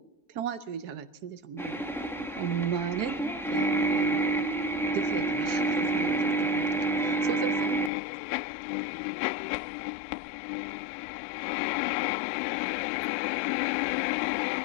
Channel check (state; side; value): drops out; right; at 7.9 s